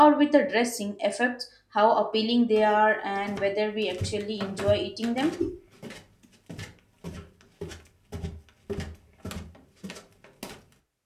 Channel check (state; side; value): identical; both; correlation 1.00